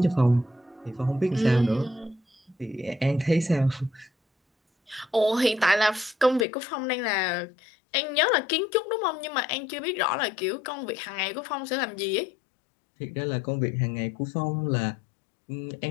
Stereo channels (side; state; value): right; drops out; at 6.5 s